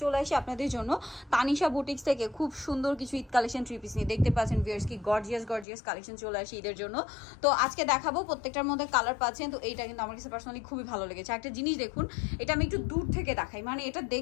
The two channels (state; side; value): drops out; right; at 5.7 s